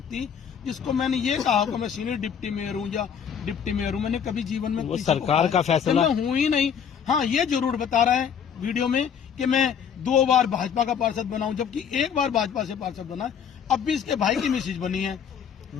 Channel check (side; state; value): right; quieter; 7.6 dB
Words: जिसको मैंने ये कहा कि मैं सीनियर डिप्टी मेयर हूँ या डिप्टी मेयर हूँ? मैंने कभी जीवन में वो सरकार का फैसला, मैं हूँ ही नहीं। हाँ, ये जरूर बता रहा है वीडियो में कि मैं 2 बार भाजपा का पार्षद बना हूं, जबकि 1 बार भाजपा से पार्षद बना है। अब भी इसके भाई की मिसेज बनी है,